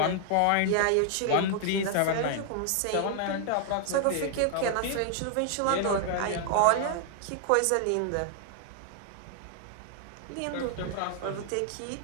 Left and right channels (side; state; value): both; different; correlation 0.00